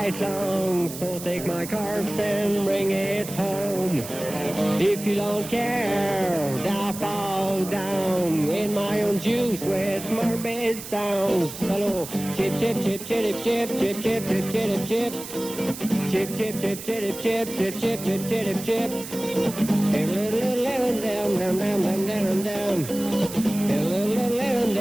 long, so take my corpse and bring it home. If you don't care, I'll fall down in my own juice with morbid sounds. Hello, chip, chip, chip, chip, chip, chip, chip, chip, chip, chip. Chip, chip, chip, chip, chip, chip, chip, chip, chip, chip. Down, down, down, down, down, down. Down,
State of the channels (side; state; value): right; noise; hiss, 11 dB below the sound